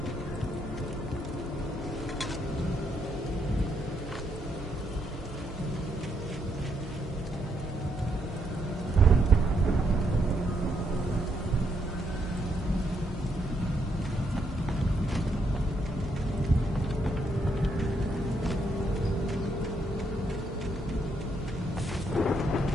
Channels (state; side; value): normal; both; correlation 0.76